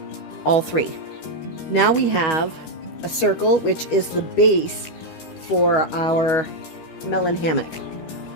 all 3. Now we have a circle, which is the base for our melon hammock.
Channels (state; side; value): late; right; 13 ms